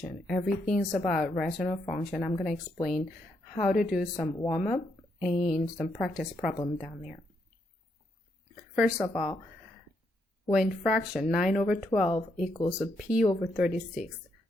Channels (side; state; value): both; normal; correlation 0.78